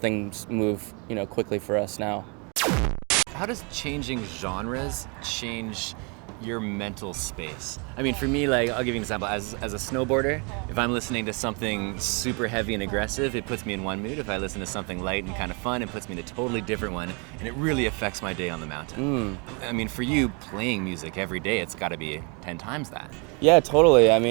move quickly for us now. How does changing genres change your mental space? For me, like, I'll give you an example. As a snowboarder, if I'm listening to something super heavy and aggressive, it puts me in one mood. If I listen to something light and kind of fun, it puts me in a totally different one, and it really affects my day on the mountain. For you, playing music every day, it's got to be 10 times that. Yeah, totally. I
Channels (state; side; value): quieter; left; 33.4 dB